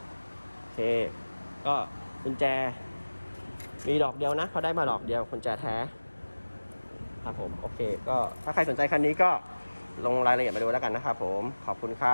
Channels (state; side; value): inverted; both; correlation -1.00